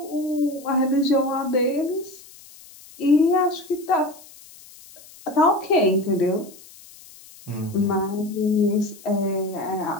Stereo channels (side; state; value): left; noise; hiss, 21 dB below the sound